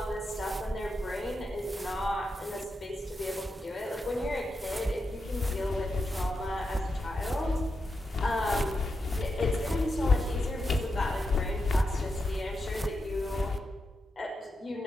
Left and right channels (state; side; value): normal; both; correlation 0.87